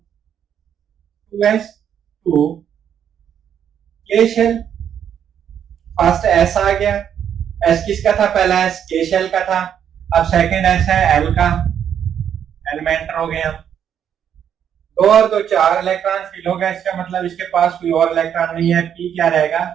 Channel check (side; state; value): left; quieter; 8.9 dB